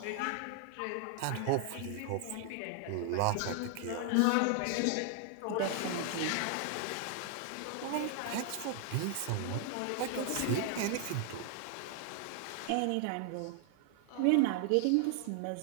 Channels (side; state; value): both; different; correlation 0.00